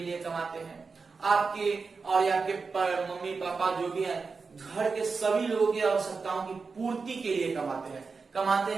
लिए कमाते हैं, आपके और आपके मम्मी पापा जो भी हैं, घर के सभी लोगों की आवश्यकताओं की पूर्ति के लिए कमाते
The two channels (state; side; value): quieter; left; 4.7 dB